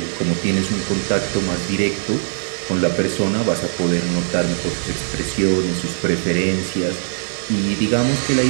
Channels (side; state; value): left; silent; digital silence